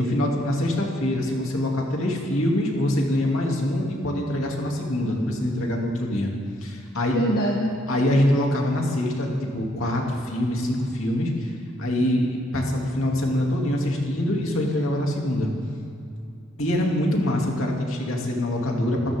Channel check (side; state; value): both; normal; correlation 0.71